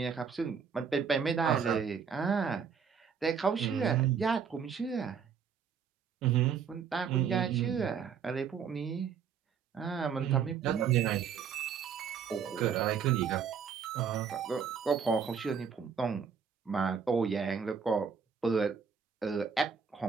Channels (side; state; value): left; quieter; 6.7 dB